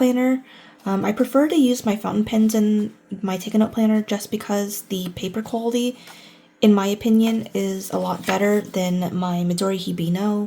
I prefer to use my fountain pens in my Take a Note planner just because the paper quality, in my opinion, is a lot better than my Midori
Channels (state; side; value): identical; both; correlation 1.00